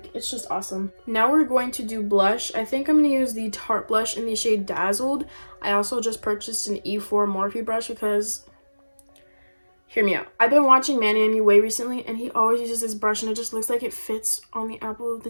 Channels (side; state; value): both; inverted; correlation -1.00